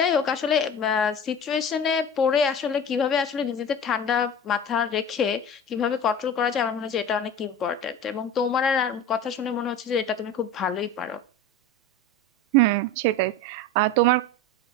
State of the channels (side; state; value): both; normal; correlation 0.33